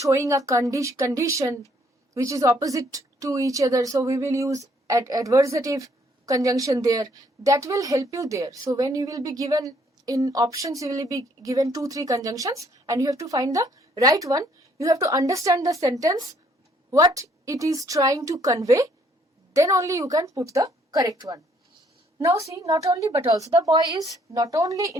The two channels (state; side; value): normal; both; correlation 0.65